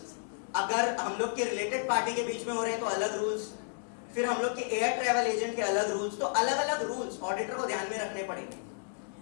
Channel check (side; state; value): right; silent; digital silence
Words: अगर हम लोग के related party के बीच में हो रहे हैं तो अलग रूल्स, फिर हम लोग के एयर ट्रैवल एजेंट के अलग रूल्स, तो अलग अलग रूल्स ऑडिटर को ध्यान में रखने पड़ेंगे.